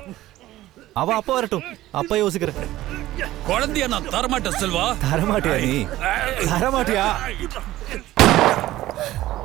அவ அப்பா வரட்டும், அப்பா யோசிக்கிறேன். குழந்தைய நான் தரமாட்டேன் செல்வா. தரமாட்டியா நீ? தரமாட்டியா?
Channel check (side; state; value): left; quieter; 15.5 dB